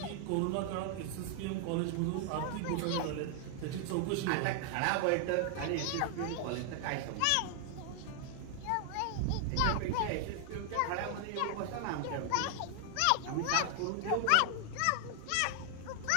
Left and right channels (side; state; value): both; different; correlation 0.00